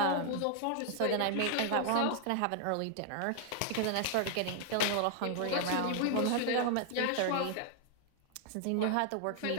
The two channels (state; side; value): different; both; correlation 0.00